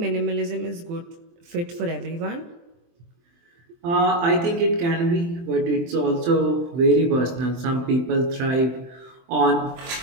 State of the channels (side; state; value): left; late; 23 ms